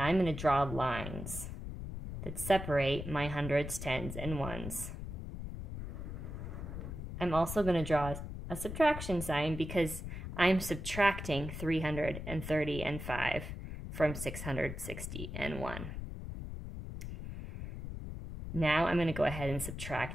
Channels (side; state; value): left; noise; rumble, 7 dB below the sound